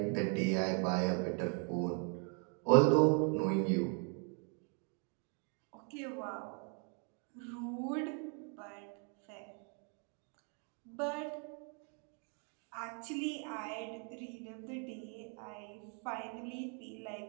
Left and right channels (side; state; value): left; quieter; 39.0 dB